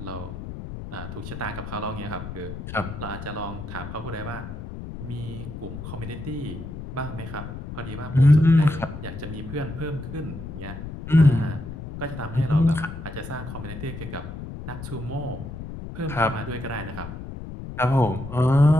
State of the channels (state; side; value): noise; left; rumble, 9 dB below the sound